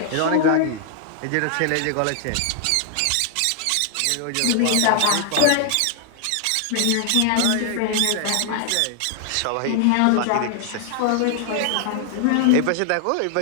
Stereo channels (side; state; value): both; different; correlation 0.00